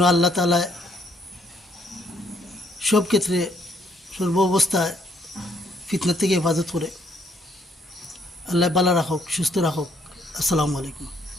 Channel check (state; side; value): normal; both; correlation 0.69